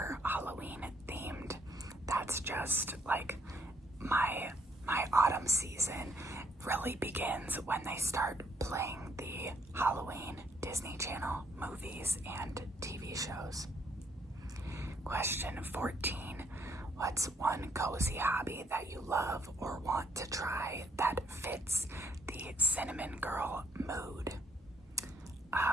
Halloween themed. That's just like my autumn season really begins when they start playing the Halloween Disney Channel movies and TV shows. Question 14. What's one cozy hobby that you love or want to try that fits the cinnamon girl mood?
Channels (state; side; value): normal; both; correlation 0.70